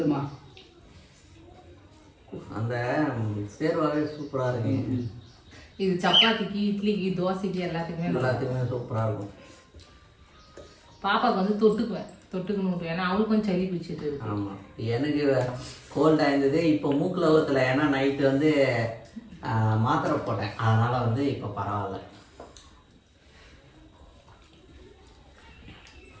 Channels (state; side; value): identical; both; correlation 1.00